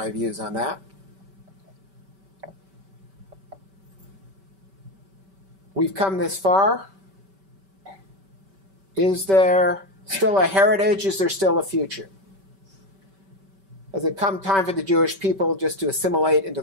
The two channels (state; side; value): late; left; 5.2 ms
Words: views on that. We've come this far. Is there still a heritage? Is there still a future? Has it come time for the Jewish people just to assimilate into